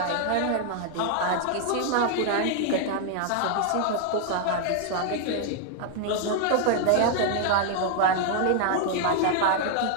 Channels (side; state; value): both; different; correlation 0.00